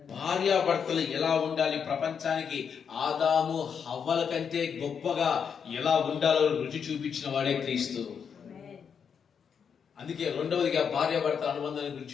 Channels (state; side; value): quieter; right; 7.0 dB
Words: భార్యాభర్తలు ఎలా ఉండాలి, ప్రపంచానికి ఆదాము హవ్వల కంటే గొప్పగా ఎలా ఉండాలో రుచి చూపించిన వాడే క్రీస్తు. అందుకే రెండవదిగా భార్యాభర్తల అనుబంధాల